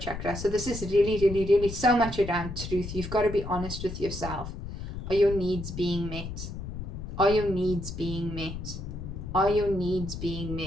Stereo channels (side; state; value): left; noise; rumble, 8 dB below the sound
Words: chakra. So this is really, really, really so much around truth. You've got to be honest with yourself. Are your needs being met? Are your needs being met? Are your needs being